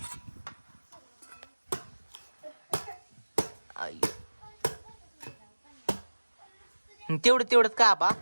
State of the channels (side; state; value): both; inverted; correlation -1.00